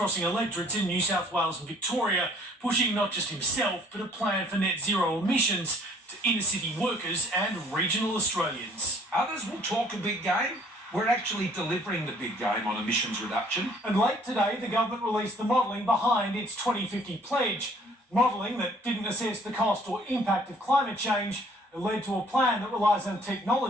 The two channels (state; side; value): normal; both; correlation 0.58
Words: electorates in New South Wales and Victoria, pushing not just himself, but a plan for net zero emissions to inner-city workers and regional Australians. Others will talk a big game. We're actually delivering the big game on emissions reduction. And late today, the government released the modelling behind its 2050 pledge. Modelling that didn't assess the cost or impact of climate change. It led to a plan that relies on